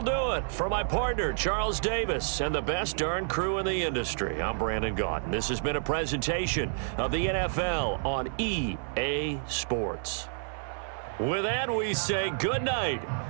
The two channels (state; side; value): silent; left; 58 dB below the other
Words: do it. For my partner, Charles Davis, and the best darn crew in the industry, I'm Brandon Gaunt. This has been a presentation of the NFL on EA Sports. With that, we say good night